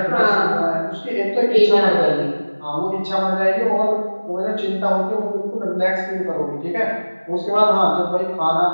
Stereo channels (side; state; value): both; inverted; correlation -1.00